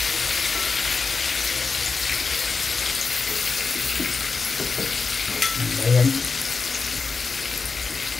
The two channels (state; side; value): quieter; right; 4.6 dB